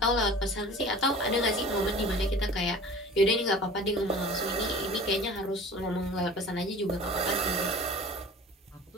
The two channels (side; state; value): both; normal; correlation 0.42